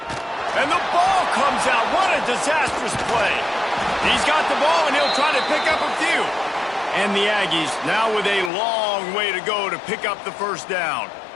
And the ball comes out. What a disastrous play. He's got the ball, and he'll try to pick up a few. And the Aggies now with a long way to go to pick up the first down.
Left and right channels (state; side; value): drops out; right; at 8.5 s